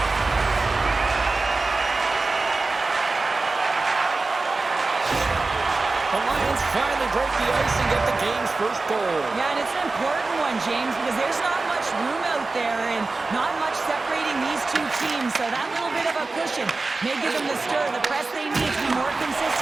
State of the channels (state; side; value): quieter; left; 3.6 dB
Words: The Lions finally break the ice and get the game's first goal. Yeah, and it's an important one, James, because there's not much room out there and not much separating these two teams. So that little bit of a cushion may give them the stir, the press they need to be more